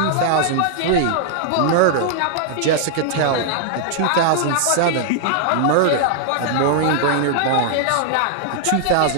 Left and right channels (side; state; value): both; different; correlation -0.01